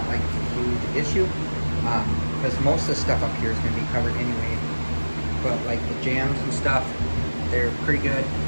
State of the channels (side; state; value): both; inverted; correlation -1.00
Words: like a huge issue, because most of the stuff up here is going to be covered anyway. But like the jams and stuff, they're pretty good.